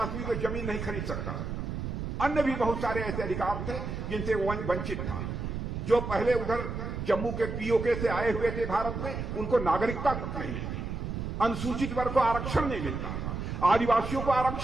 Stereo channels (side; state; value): right; noise; rumble, 4 dB below the sound